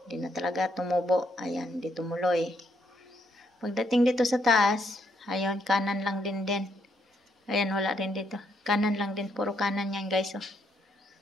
Hindi na talaga tumubo. Ayan, hindi tumuloy. Pagdating dito sa taas, ayun, kanan lang din. Ayan, wala rin dito. Kanan lang din, puro kanan yan guys. Oh.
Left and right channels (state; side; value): normal; both; correlation 0.74